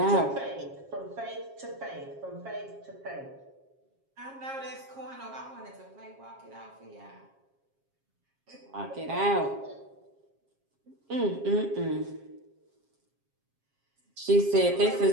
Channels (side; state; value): left; late; 7.4 ms